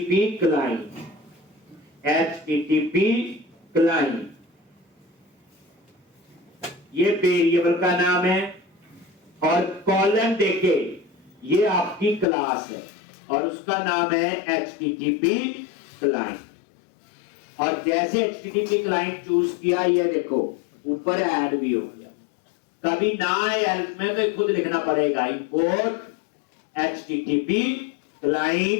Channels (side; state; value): right; drops out; at 12.2 s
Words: क्लाइंट, HTTP क्लाइंट, ये वेरिएबल का नाम है, और कॉलम देके ये आपकी क्लास है और उसका नाम है HTTP क्लाइंट। और जैसे HTTP क्लाइंट चूज किया, ये देखो ऊपर ऐड भी हो गया। कभी ना आए हेल्प में तो खुद लिखना पड़ेगा, इंपोर्ट HTTP